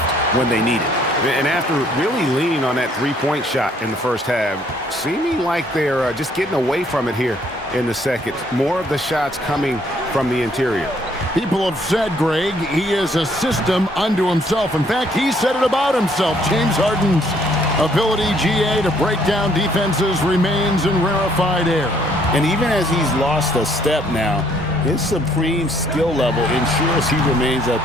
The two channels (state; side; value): normal; both; correlation 0.65